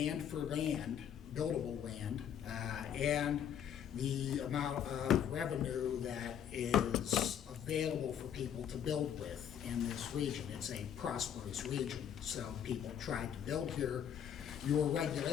for land, buildable land, and the amount of revenue that is available for people to build with in this region. It's a prosperous region, so people try to build here. Your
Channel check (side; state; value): right; quieter; 9.1 dB